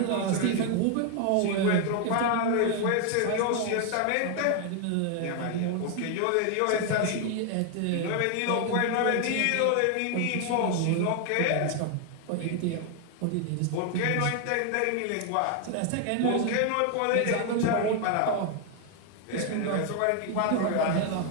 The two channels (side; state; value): both; different; correlation 0.00